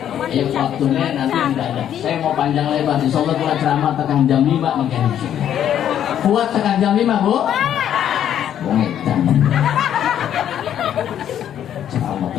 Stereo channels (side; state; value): right; quieter; 10.2 dB